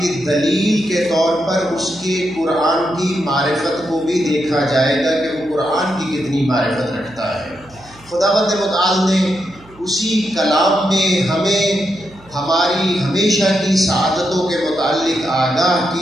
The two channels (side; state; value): right; noise; hum, 25 dB below the sound